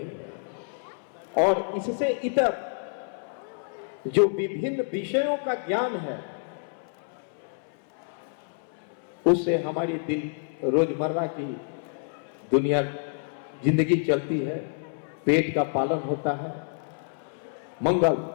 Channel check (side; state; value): right; silent; 59 dB below the other